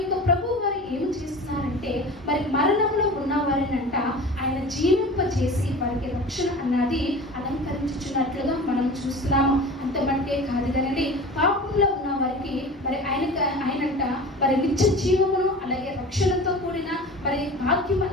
ప్రభు వారు ఏమి చేస్తున్నారంటే మరి మరణంలో ఉన్న వారిని అంట ఆయన జీవింపచేసి వారికి రక్షణ అన్నది అలంకరించుచున్నట్లుగా మనం చూస్తున్నాము. అంత మటుకే కాదు కదండి, పాపంలో ఉన్న వారికి మరి ఆయనంట మరి నిత్య జీవమును అలాగే రక్షణతో కూడిన మరి భాగ్యం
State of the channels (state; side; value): normal; both; correlation 0.36